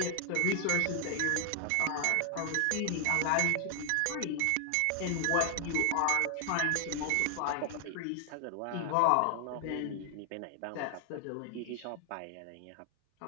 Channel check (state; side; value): different; both; correlation 0.00